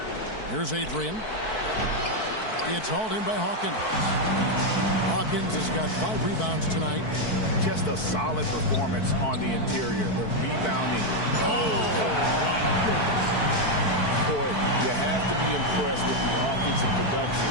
Here's Adrian. It's hauled in by Hawkins. Hawkins has got 5 rebounds tonight. Just a solid performance on the interior. The rebounding. Boy, you have to be impressed with the offensive production.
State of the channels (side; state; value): right; late; 4.6 ms